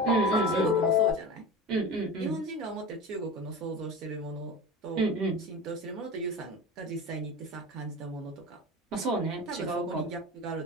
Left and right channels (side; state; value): both; normal; correlation 0.31